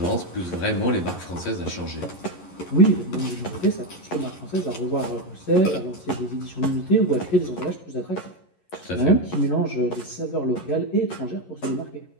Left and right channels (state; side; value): late; right; 11 ms